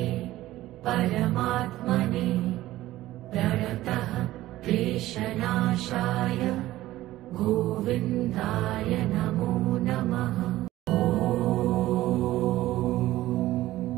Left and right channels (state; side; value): quieter; left; 15.8 dB